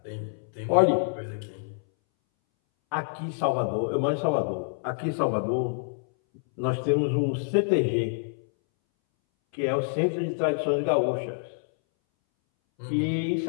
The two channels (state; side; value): silent; right; 60 dB below the other